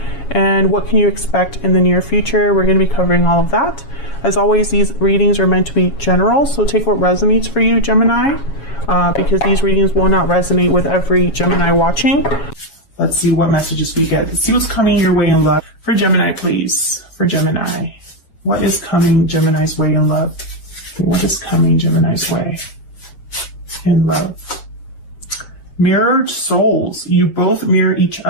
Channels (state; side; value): late; right; 7.2 ms